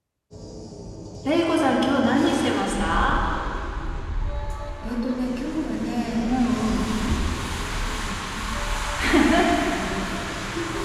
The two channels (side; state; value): both; identical; correlation 1.00